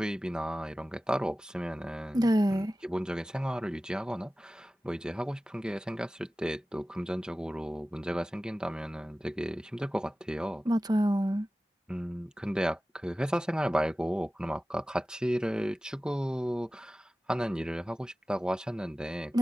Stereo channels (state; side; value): normal; both; correlation 0.96